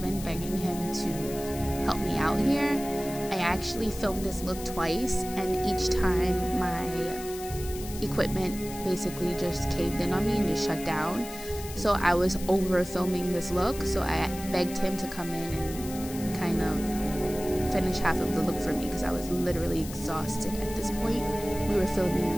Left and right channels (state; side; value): noise; left; hiss, 13 dB below the sound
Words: begging him to help me out here. I actually filmed this look twice, and each time my equipment basically just caved in on me and just shut down. So I was over filming this look, so I begged him to come in and kind of finish half of the look for me because I was literally exhausted at this point. We were